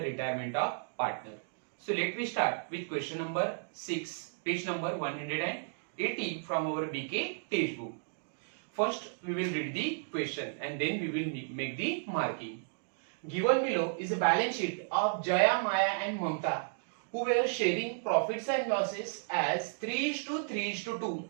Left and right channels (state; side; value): silent; left; digital silence